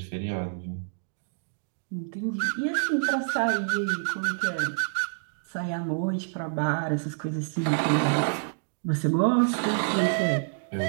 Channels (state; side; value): silent; left; digital silence